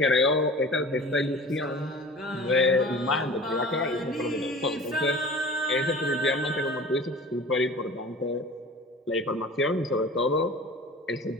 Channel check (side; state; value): both; normal; correlation 0.41